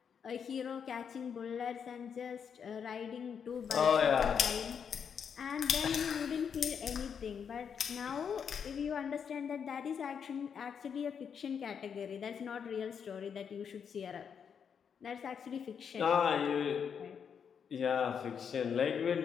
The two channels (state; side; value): quieter; right; 7.2 dB